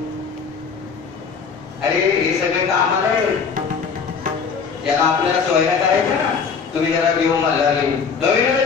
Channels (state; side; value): quieter; right; 5.8 dB